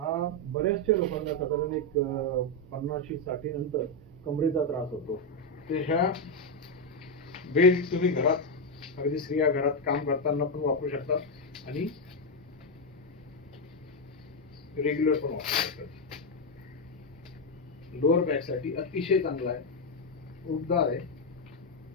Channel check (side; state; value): both; normal; correlation 0.04